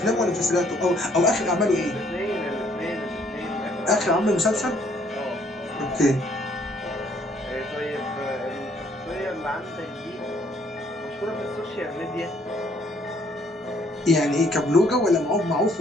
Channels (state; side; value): normal; both; correlation 0.65